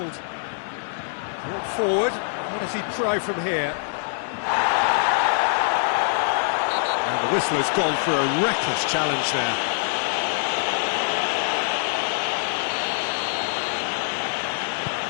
Brought forward, what does he try from here? And the whistler's gone for a reckless challenge there.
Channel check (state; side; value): silent; right; 63 dB below the other